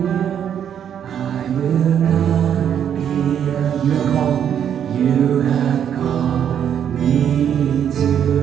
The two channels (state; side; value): quieter; left; 9.0 dB